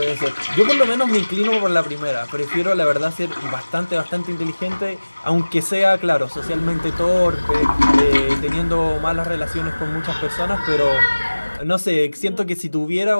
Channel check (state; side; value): inverted; both; correlation -1.00